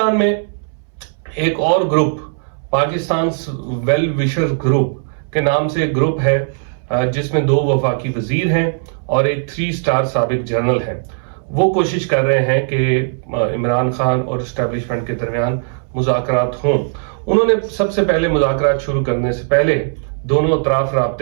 میں ایک اور group, Pakistan well wisher group کے نام سے ایک گروپ ہے جس میں 2 وفاقی وزیر ہیں اور ایک 3 سٹار سابق جنرل ہیں۔ وہ کوشش کر رہے ہیں کہ عمران خان اور اسٹیبلشمنٹ کے درمیان مذاکرات ہوں۔ انہوں نے سب سے پہلے مذاکرات شروع کرنے سے پہلے، دونوں اطراف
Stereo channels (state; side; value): silent; left; 65 dB below the other